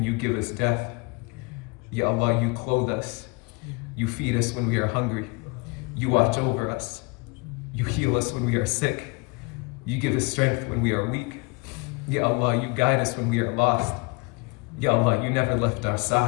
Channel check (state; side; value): quieter; right; 29.0 dB